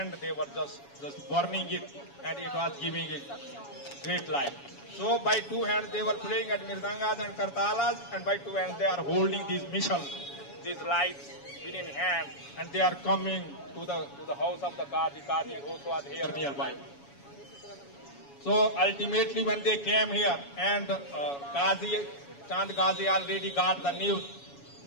they were just burning it, and it was giving a great light. So by two hands they were playing at mirdangas and kartalas, and by two hands they are holding these mishals, these lights within hand, and they are coming to the house of the Qazi. Qazi also was here nearby. So ultimately when they came here, and Chand Qazi already got the news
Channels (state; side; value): late; right; 7.1 ms